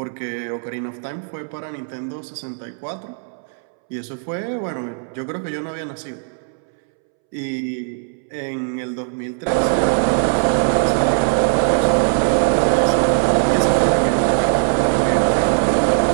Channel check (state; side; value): silent; left; 66 dB below the other